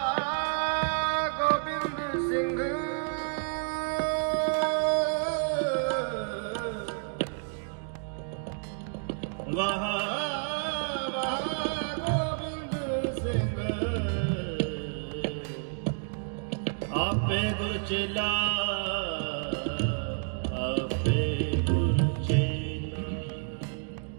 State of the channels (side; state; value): left; silent; digital silence